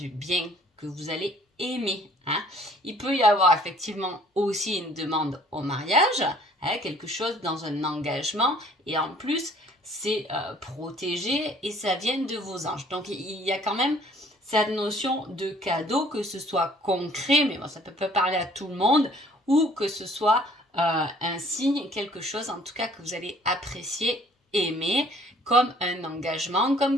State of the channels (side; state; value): both; normal; correlation 0.57